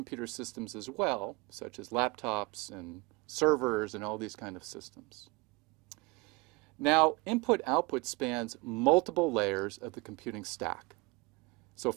systems as well, such as laptops and servers and all these kind of systems. Now, input-output spans multiple layers of the computing stack. So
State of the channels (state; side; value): quieter; left; 25.0 dB